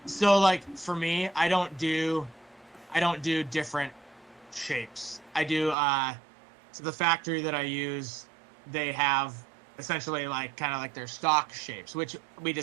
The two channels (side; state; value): left; drops out; at 5.8 s